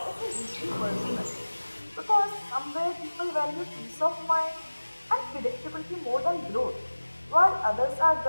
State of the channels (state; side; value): inverted; both; correlation -1.00